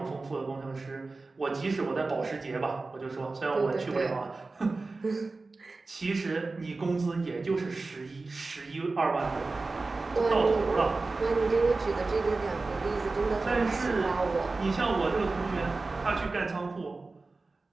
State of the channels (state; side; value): quieter; left; 3.6 dB